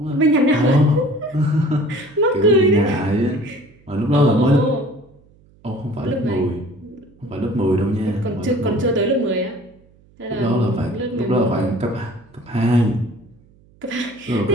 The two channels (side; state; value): right; noise; hum, 30 dB below the sound